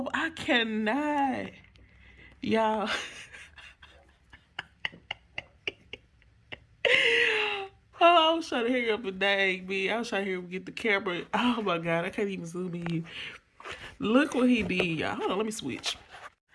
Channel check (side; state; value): both; identical; correlation 1.00